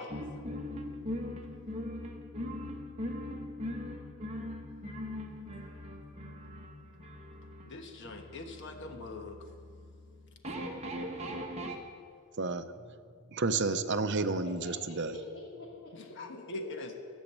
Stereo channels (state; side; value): normal; both; correlation 0.19